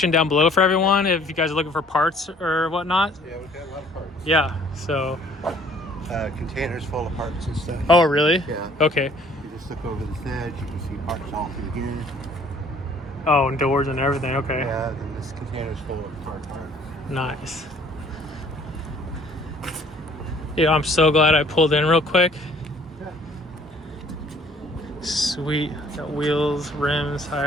down below for everyone if you guys are looking for parts or whatnot. Yeah, we've got a lot of parts. Yeah. So. Containers full of parts and stuff. Oh really? Yeah. Okay. You just look over this edge, you can see parts all through here. Oh, and doors and everything. Okay. Yeah, then this container's full of car parts. Nice. Yeah, I'm so glad I pulled in real quick. Yeah. Sweet. Got wheels, rims,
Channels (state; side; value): normal; both; correlation 0.57